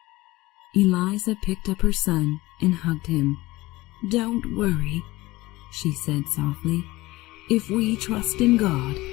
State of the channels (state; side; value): quieter; right; 19.5 dB